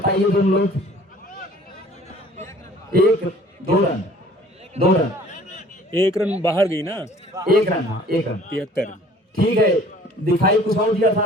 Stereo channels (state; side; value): normal; both; correlation 0.52